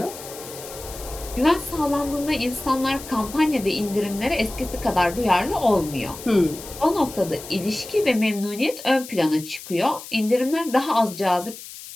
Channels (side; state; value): left; noise; hiss, 14 dB below the sound